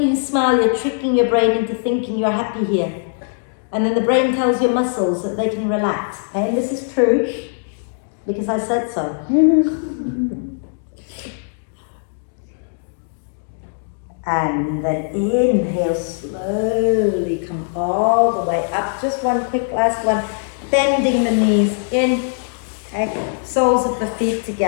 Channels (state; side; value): silent; right; digital silence